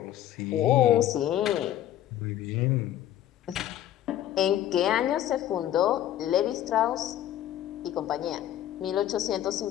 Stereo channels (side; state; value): right; quieter; 12.1 dB